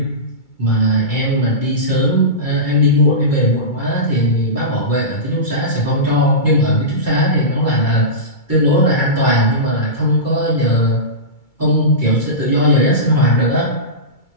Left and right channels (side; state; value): right; late; 2.3 ms